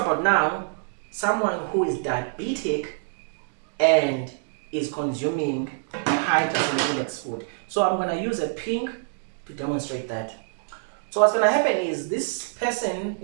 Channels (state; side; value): silent; left; digital silence